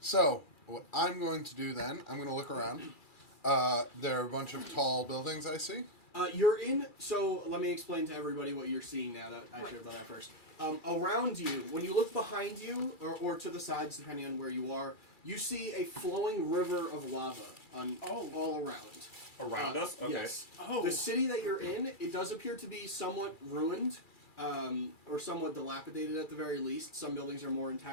So, what I'm going to do then, I'm going to look around. There are a bunch of tall buildings I see. You're in. So let me explain to everybody what you're seeing now. That I should have done that first. Around you, when you look behind you or to the sides, depending on where you are, you see a flowing river of lava all around. Around us? Okay. Yes. Oh. The city that you're in, it does appear to be somewhat ruined, or somewhat dilapidated at the very least. Some buildings are more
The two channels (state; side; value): late; right; 2.3 ms